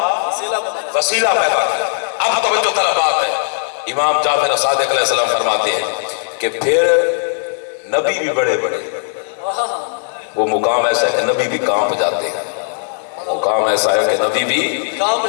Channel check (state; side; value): silent; right; 57 dB below the other